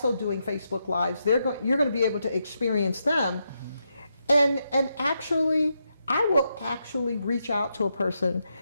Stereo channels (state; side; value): inverted; both; correlation -0.83